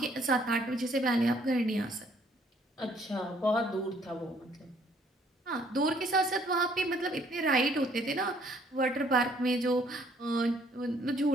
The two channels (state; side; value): normal; both; correlation 0.63